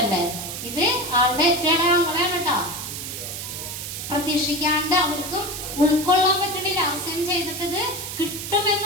ഇത്, ആളുടെ ഏറ്റവും ഞങ്ങളെയാണ് കേട്ടോ. പ്രതീക്ഷിക്കാണ്ട് അവർക്കും ഉൾക്കൊള്ളാൻ പറ്റണില്ല. അവസാനം ചെയ്തിട്ട് ഇത്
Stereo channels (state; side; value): noise; right; hiss, 7 dB below the sound